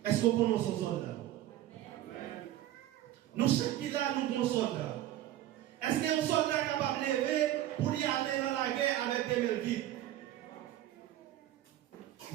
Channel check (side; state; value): left; quieter; 13.4 dB